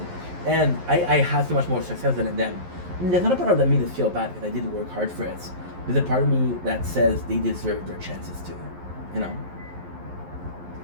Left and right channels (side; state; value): left; late; 11 ms